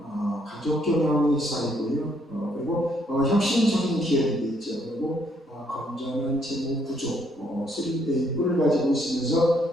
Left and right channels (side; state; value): both; normal; correlation 0.70